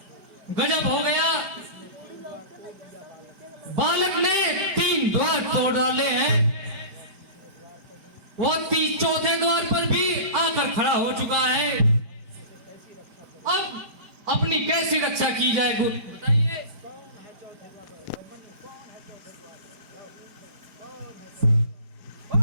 गजब हो गया। बालक ने 3 द्वार तोड़ डाले हैं, वो 4थे द्वार पर भी आकर खड़ा हो चुका है। अब अपनी कैसी रक्षा की जाए गुरु बताइए। कौन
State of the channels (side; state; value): left; late; 5.3 ms